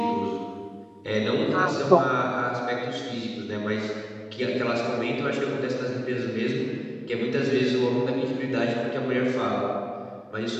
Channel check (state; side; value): identical; both; correlation 1.00